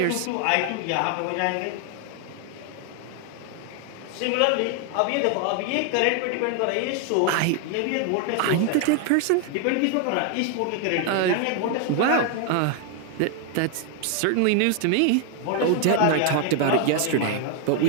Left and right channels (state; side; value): different; both; correlation 0.00